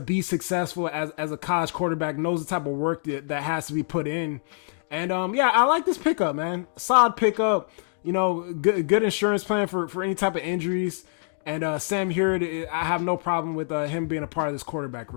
be successful as a college quarterback, knows the type of work that has to be put in. And I like this pickup, man. Solid pickup, good insurance plan for any type of injuries. And Sam Heward, I have no problem with him being a part of this quarterback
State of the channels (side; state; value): right; silent; digital silence